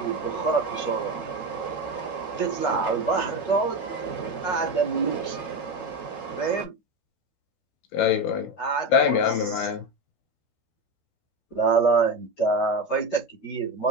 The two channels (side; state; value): right; late; 13 ms